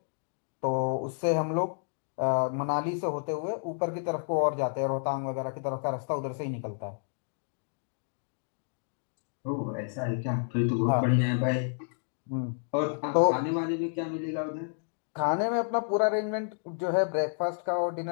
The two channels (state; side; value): silent; right; digital silence